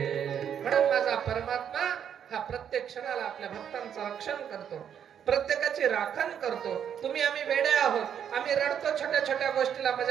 म्हणून माझा परमात्मा हा प्रत्येक क्षणाला आपल्या भक्तांचं रक्षण करतो, प्रत्येकाची राखण करतो. तुम्ही आम्ही वेडे आहोत, आम्ही रडतो छोट्या छोट्या गोष्टीला,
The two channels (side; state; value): left; quieter; 8.7 dB